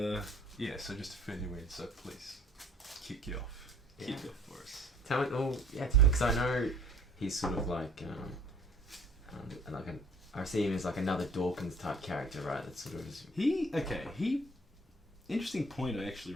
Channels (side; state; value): both; normal; correlation 0.54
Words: yeah, so just to fill you in, so please kick you off. Yeah. Kick it off for us. Tell me, because I know he's sort of like I see him as like another Dawkins type character, right? That sort of is. Interesting point I actually